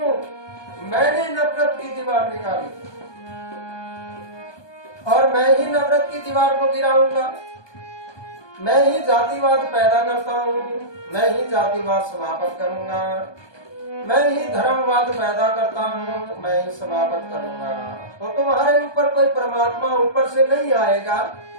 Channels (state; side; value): late; right; 1.2 ms